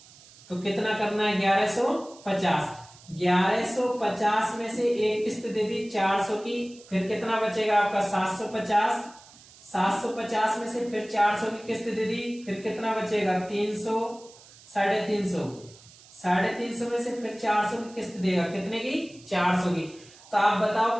तो कितना करना है? 1150। 1150 में से एक किस्त दे दी 400 की, फिर कितना बचेगा आपका? 750। 750 में से फिर 400 की किस्त दे दी, फिर कितना बचेगा? 300, 350। 350 में से फिर 400 की किस्त देगा, कितने की? 400 की। तो आप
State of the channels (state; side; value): noise; right; hiss, 23 dB below the sound